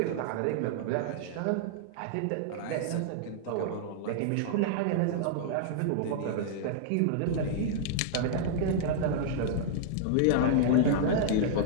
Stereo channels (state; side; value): different; both; correlation -0.01